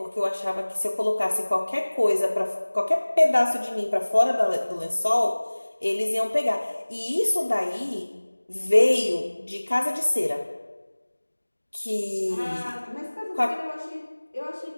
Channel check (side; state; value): both; inverted; correlation -1.00